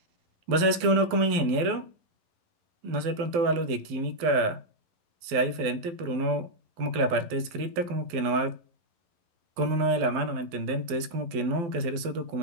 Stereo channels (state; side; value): late; left; 12 ms